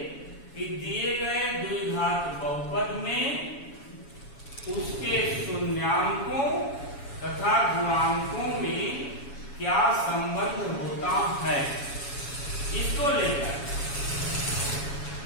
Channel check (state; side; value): late; right; 7.2 ms